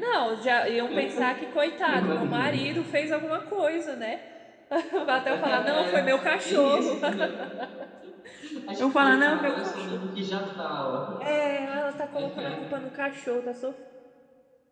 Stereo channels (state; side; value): identical; both; correlation 1.00